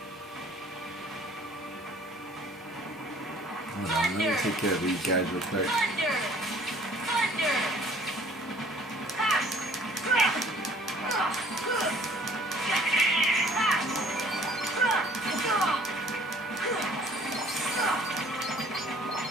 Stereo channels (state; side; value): normal; both; correlation 0.54